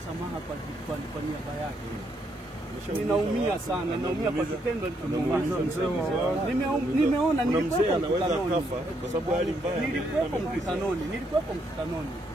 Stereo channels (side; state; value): both; normal; correlation 0.75